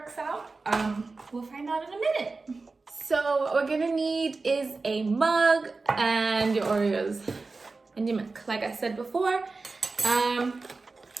out. We'll find out in a minute. So what we're gonna need is a mug and your Oreos and your milk, like I said before. I'm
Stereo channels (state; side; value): quieter; left; 3.8 dB